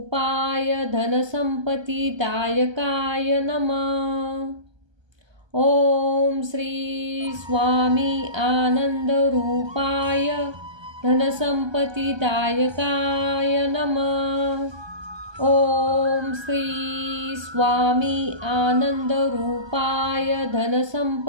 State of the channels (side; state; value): left; late; 1.3 ms